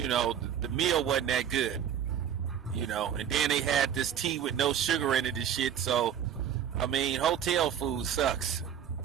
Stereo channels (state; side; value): quieter; left; 9.0 dB